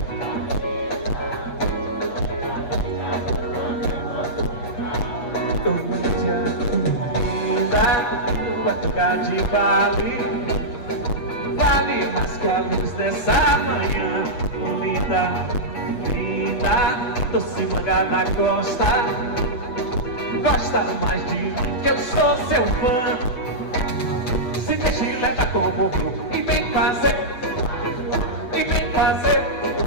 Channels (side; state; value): right; late; 8.3 ms